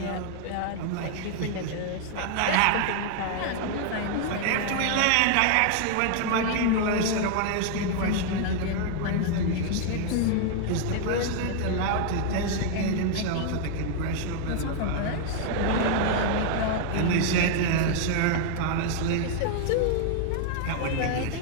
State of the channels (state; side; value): different; both; correlation 0.00